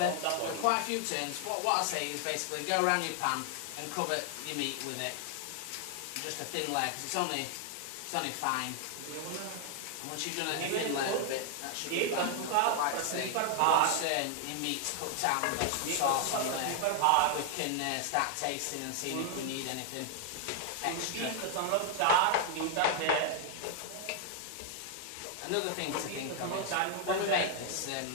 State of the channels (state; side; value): different; both; correlation 0.00